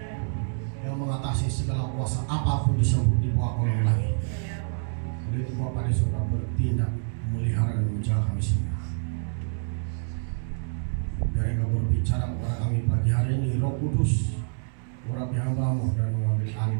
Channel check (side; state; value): left; silent; digital silence